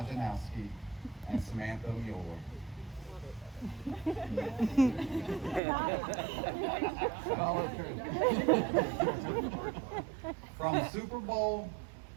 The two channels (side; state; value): left; drops out; at 5.6 s